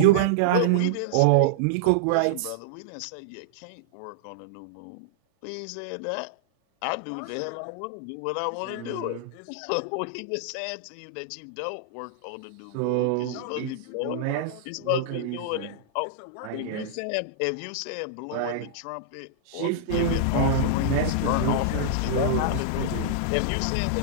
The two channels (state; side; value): different; both; correlation -0.02